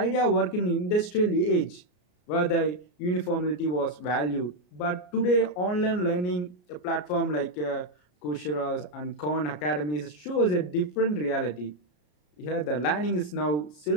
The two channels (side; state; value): right; late; 33 ms